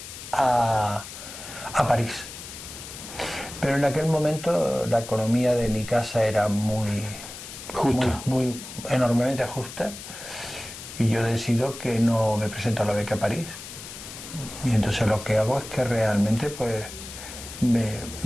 a París. Pero en aquel momento la economía de mi casa era muy enormemente justa, y yo decido que no me presento a la beca a París. Y entonces lo que hago es que realmente pues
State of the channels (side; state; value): left; noise; hiss, 12 dB below the sound